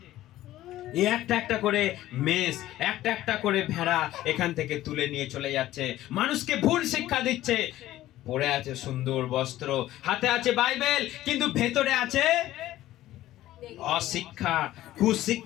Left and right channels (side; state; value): right; quieter; 14.7 dB